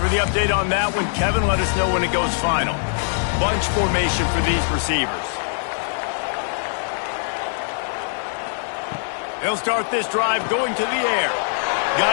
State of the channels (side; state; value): right; silent; 58 dB below the other